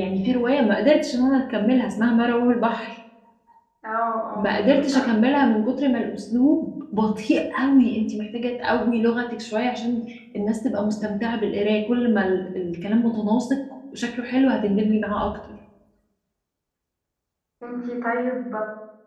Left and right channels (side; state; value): both; identical; correlation 1.00